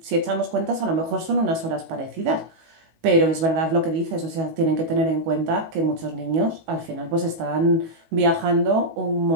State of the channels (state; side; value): late; left; 19 ms